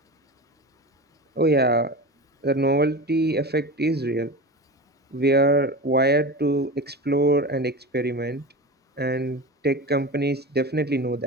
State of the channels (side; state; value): both; normal; correlation 0.28